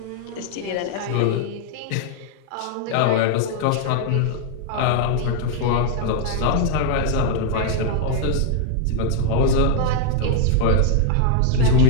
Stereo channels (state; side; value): different; both; correlation 0.00